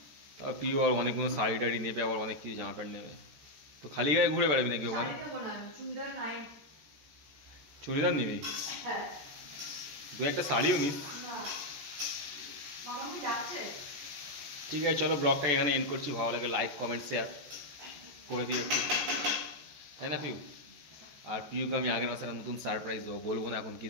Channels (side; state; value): left; late; 14 ms